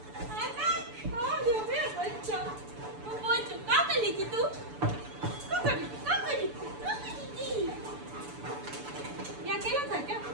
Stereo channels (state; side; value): late; left; 6.9 ms